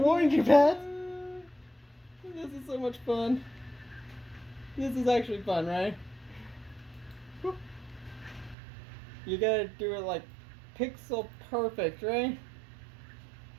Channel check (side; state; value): left; drops out; at 8.6 s